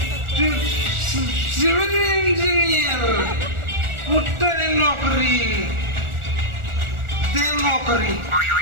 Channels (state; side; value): late; left; 1.4 ms